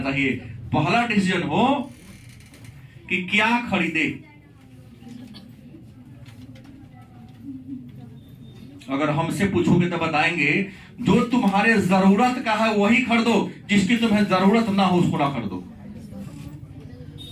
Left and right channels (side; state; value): both; identical; correlation 1.00